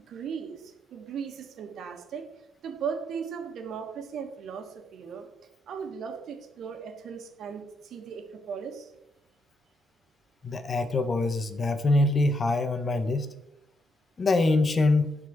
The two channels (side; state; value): both; normal; correlation 0.79